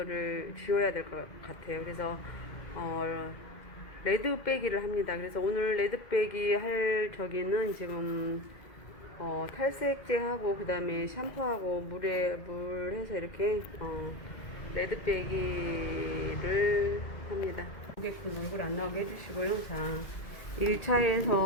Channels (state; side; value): late; right; 2.1 ms